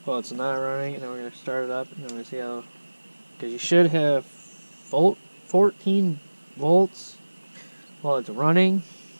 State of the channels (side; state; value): both; inverted; correlation -1.00